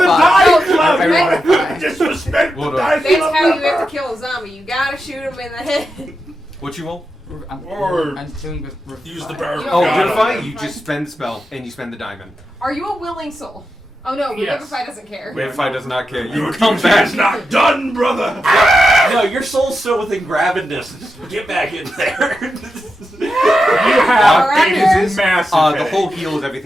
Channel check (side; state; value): both; normal; correlation 0.88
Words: dive club. Everyone Disrespect the Hold on. dive That's club. how you have to kill a zombie. You gotta shoot him in the head. What you roll? I'm doing Use the power. You Oh, don't- Vivify. You just spend the spell and you spend the diamond. Are you a willing soul? Oh no, Yes. Revivify doesn't care. Vivify does not care. You Your come duty back. is not done, brother. No, your soul's still within grabbing distance. Just get back in there. You have Alright. a massive The headache. whole heals.